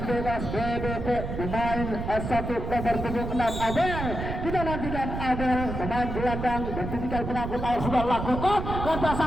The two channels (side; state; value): right; noise; rumble, 5 dB below the sound